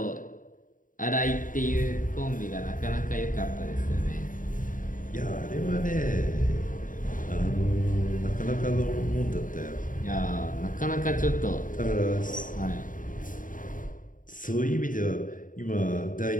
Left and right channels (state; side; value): late; right; 0.39 ms